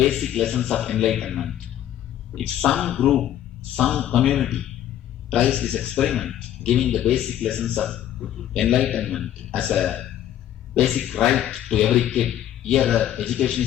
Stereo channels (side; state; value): right; quieter; 11.6 dB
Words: lessons of enlightenment, if some group, some community tries this experiment, giving the basic lessons of enlightenment as a basic right to every kid, here education